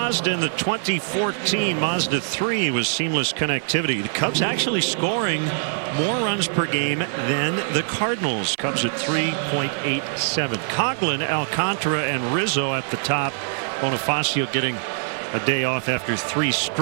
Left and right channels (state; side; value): silent; left; 63 dB below the other